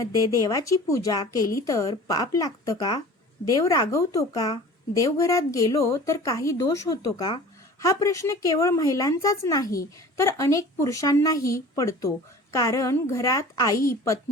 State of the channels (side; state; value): both; normal; correlation 0.41